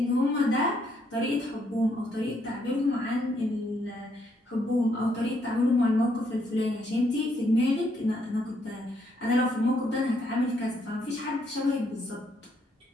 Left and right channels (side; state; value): both; normal; correlation 0.73